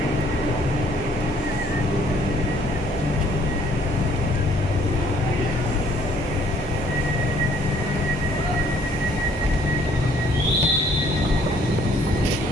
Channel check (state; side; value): normal; both; correlation 0.61